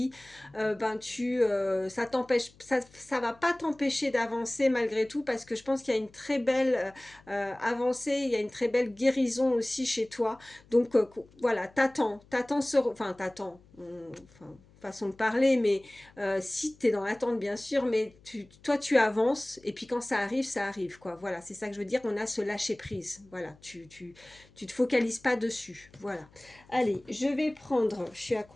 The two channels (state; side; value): noise; left; hum, 27 dB below the sound